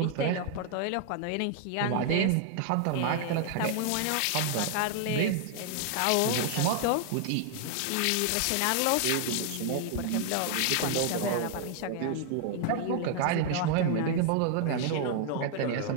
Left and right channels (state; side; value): different; both; correlation 0.00